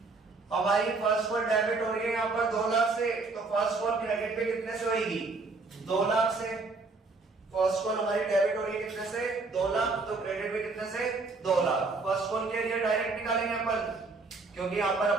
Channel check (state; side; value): quieter; left; 3.8 dB